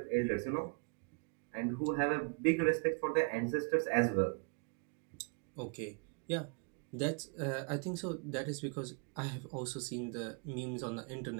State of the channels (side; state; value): left; quieter; 34.4 dB